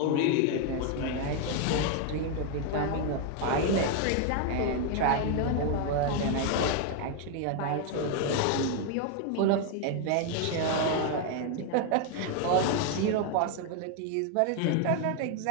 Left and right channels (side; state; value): both; different; correlation 0.01